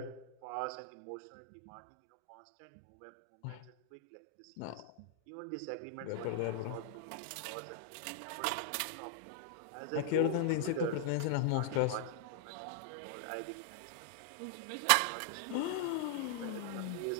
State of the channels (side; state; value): both; different; correlation -0.01